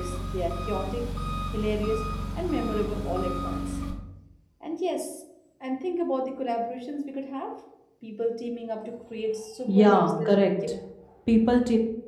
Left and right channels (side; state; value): both; identical; correlation 1.00